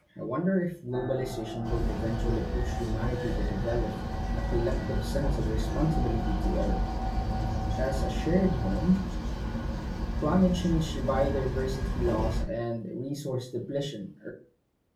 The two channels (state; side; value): identical; both; correlation 1.00